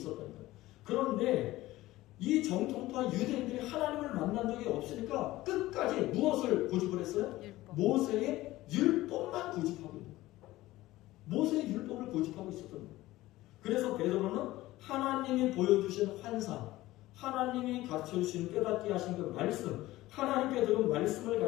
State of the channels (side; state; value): right; quieter; 17.2 dB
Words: 거예요. 그런데 이 정통파 유대인들이 하나님을 만난 적이 없으니까 끝까지 무엇을 고집을 했어요? 율법. 모세의 율법만 고집하고 있는 거예요. 모세의 율법을 고집하고 있었던 거예요. 그래서 베드로는 하나님이 보여주신 환상, 하나님이 가르쳐주신 깨닫게 하신 그 말씀, 하나님께 들은 말씀을